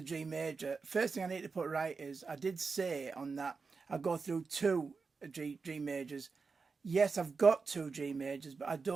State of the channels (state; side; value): quieter; left; 4.7 dB